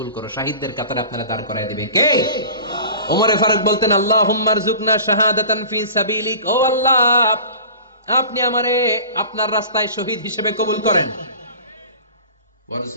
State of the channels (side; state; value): both; inverted; correlation -0.40